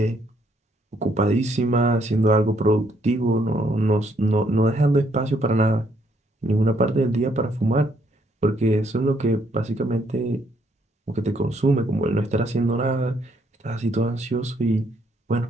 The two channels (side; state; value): both; normal; correlation 0.70